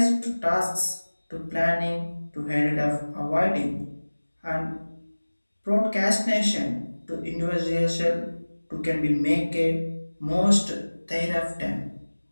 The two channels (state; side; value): inverted; both; correlation -1.00